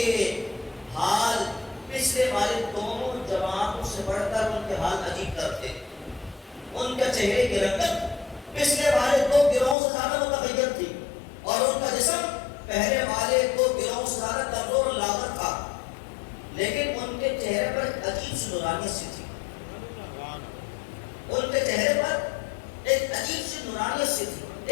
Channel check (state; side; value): drops out; right; at 9.8 s